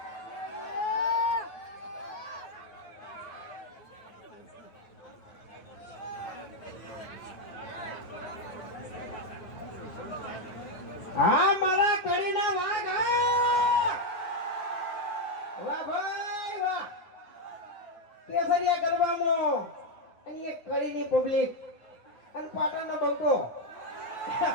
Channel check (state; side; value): late; right; 9.0 ms